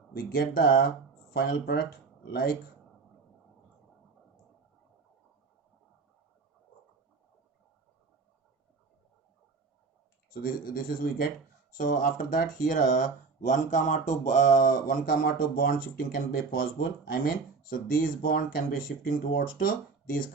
We get the final product like so. This is we get. So after that here 1, 2 bond shifting can be possible. I mean, so these bond can be shifting towards to this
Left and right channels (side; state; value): left; quieter; 4.7 dB